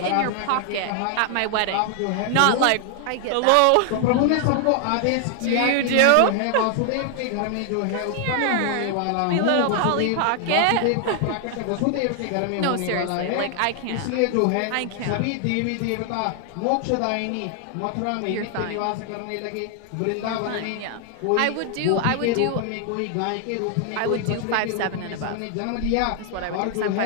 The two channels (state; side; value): different; both; correlation 0.00